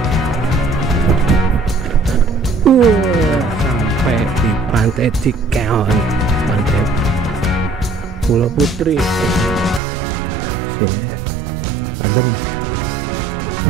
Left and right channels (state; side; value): drops out; left; at 9.8 s